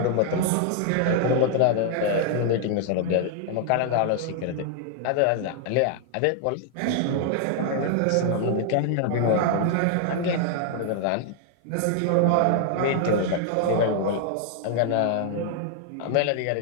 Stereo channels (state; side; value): different; both; correlation 0.00